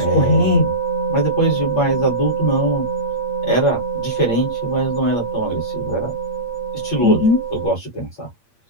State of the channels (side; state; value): right; late; 8.6 ms